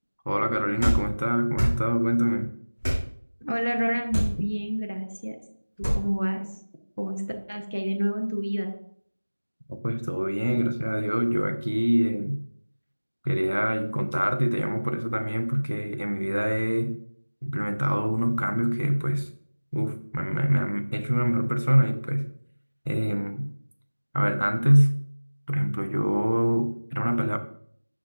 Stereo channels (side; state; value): both; inverted; correlation -1.00